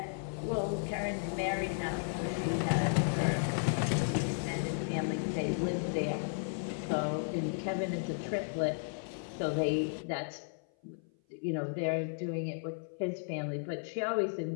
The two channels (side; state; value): right; silent; 55 dB below the other